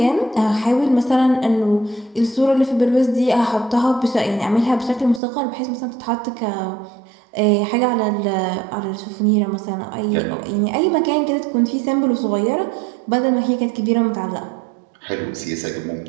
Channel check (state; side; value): drops out; left; at 5.2 s